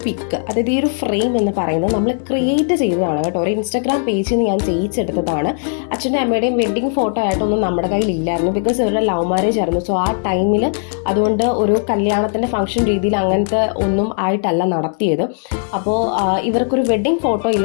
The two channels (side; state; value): right; silent; digital silence